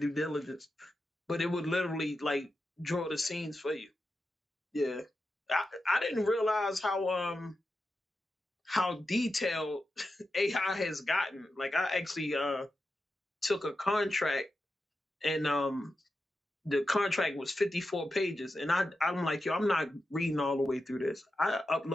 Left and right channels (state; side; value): normal; both; correlation 0.90